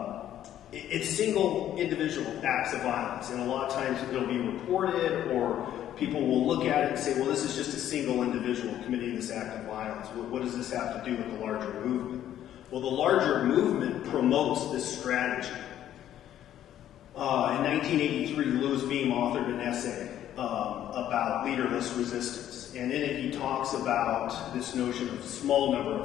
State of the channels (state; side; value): quieter; right; 11.5 dB